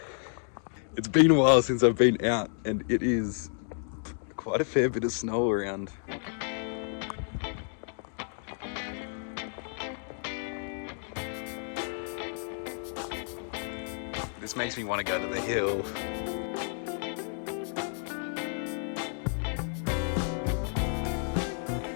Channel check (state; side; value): silent; right; 57 dB below the other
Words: It's been a while since I've been out and it is quite a fair bit of snow around. This makes me want to go to the hill.